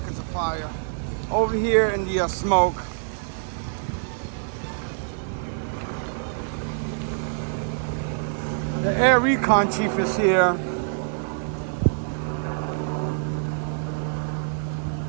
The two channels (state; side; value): silent; left; digital silence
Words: of fire. Over here in the smoke. The air recon chief is here.